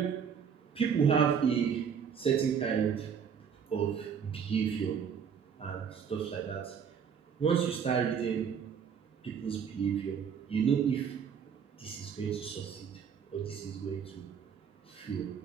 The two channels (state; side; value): quieter; left; 7.2 dB